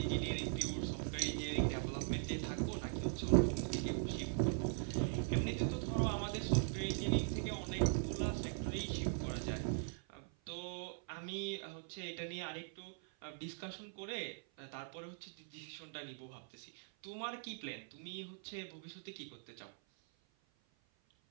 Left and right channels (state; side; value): silent; left; 50 dB below the other